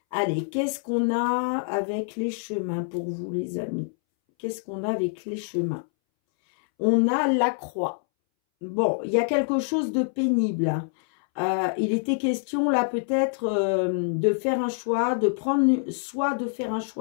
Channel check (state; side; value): silent; right; 61 dB below the other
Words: allez, qu'est-ce qu'on a avec les chemins pour vous les amis? Qu'est-ce qu'on a avec les chemins? On a la croix. Bon, il y a quelque chose de pénible. Il était question là peut-être de faire un choix, de prendre soit de faire un